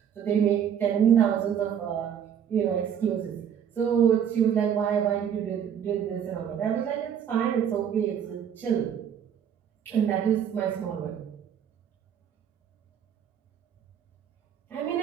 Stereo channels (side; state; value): left; quieter; 8.7 dB